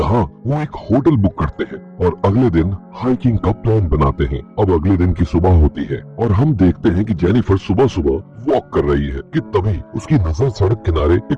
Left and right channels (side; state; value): both; identical; correlation 1.00